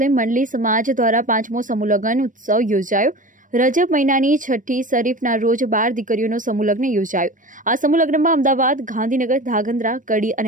મંડળી સમાજ દ્વારા 5મો સમૂહ લગ્ન ઉત્સવ યોજાયો। રજબ મહિનાની 6ઠી શરીફના રોજ 12 દીકરીઓનો સમૂહ લગ્ન યોજાયો। આ સમૂહ લગ્નમાં અમદાવાદ, ગાંધીનગર, ધાંગધ્રા, કડી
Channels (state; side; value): late; left; 0.38 ms